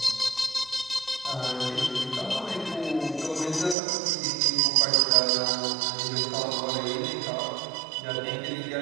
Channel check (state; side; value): drops out; left; at 3.8 s